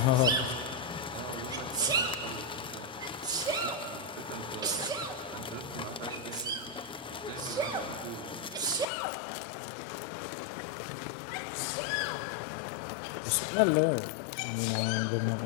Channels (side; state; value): right; drops out; at 8.8 s